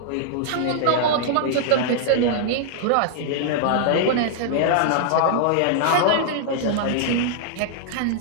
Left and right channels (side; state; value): both; different; correlation -0.01